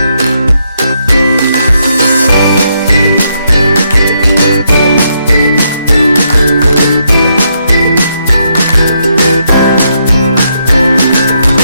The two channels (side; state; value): both; inverted; correlation -0.77